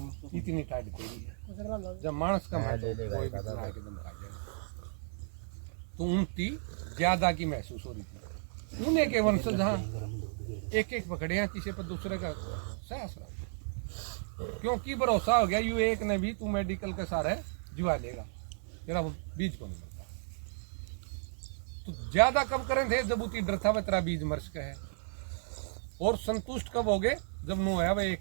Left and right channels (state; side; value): silent; left; 55 dB below the other